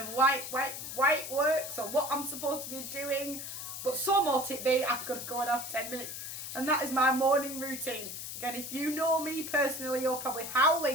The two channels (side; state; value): left; noise; hiss, 7 dB below the sound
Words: why it works or what I'm supposed to be doing. But so mote it be, I've got to go and have 10 minutes. And that is my morning routine. Again, if you know me personally, you're probably